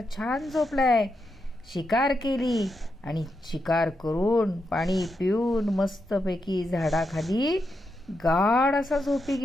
छान झोपलाय. शिकार केली आणि शिकार करून पाणी पिऊन मस्तपैकी झाडाखाली गाढ असा झोपी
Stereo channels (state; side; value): normal; both; correlation 0.84